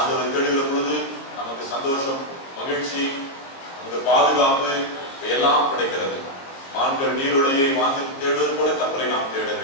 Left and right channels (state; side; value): late; right; 22 ms